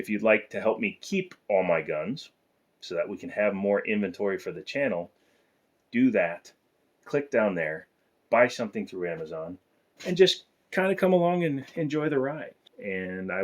you'd like to help me keep all my guns so that we can have more inventory for the channel, do that. Click down there, buy something through Amazon, and just kind of come along and enjoy the ride. And I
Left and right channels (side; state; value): both; identical; correlation 1.00